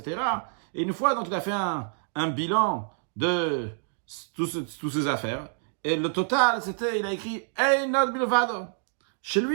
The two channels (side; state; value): left; silent; digital silence